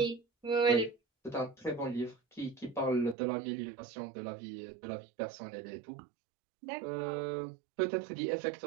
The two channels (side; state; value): left; drops out; at 3.2 s